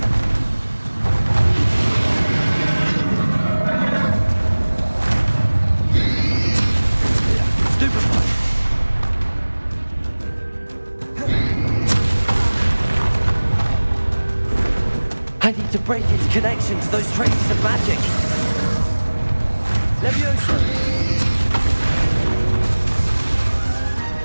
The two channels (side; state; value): both; inverted; correlation -1.00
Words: Stupefy. I need to break its connection to those traces of magic. Levioso.